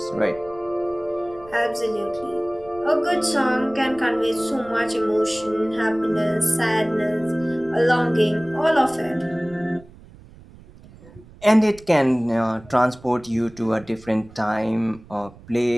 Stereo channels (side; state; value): right; noise; rumble, 22 dB below the sound